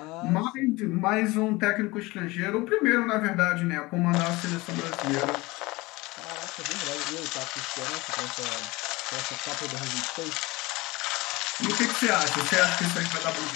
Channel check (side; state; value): right; quieter; 22.1 dB